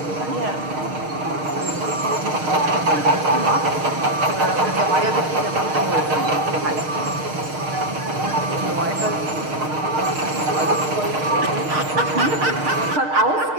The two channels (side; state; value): left; late; 6.5 ms